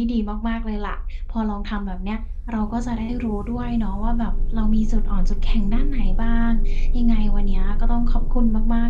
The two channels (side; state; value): both; identical; correlation 1.00